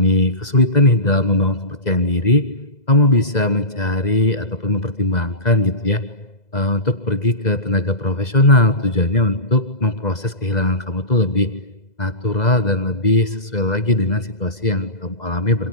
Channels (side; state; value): right; late; 2.0 ms